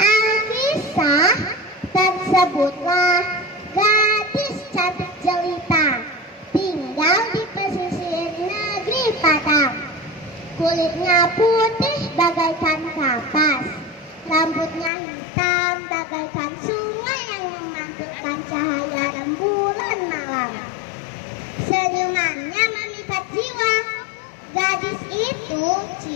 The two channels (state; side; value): drops out; right; at 14.9 s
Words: tersebutlah gadis cantik jelita, tinggal di pesisir negeri Padang. Kulitnya putih bagaikan kapas, rambutnya hitam bagaikan sungai yang memantulkan cahaya rembulan malam. Senyumannya memikat jiwa. Gadis itu